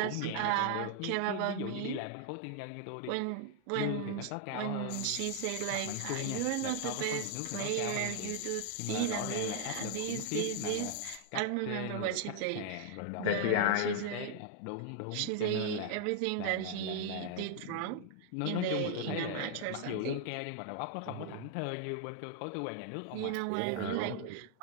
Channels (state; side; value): different; both; correlation 0.00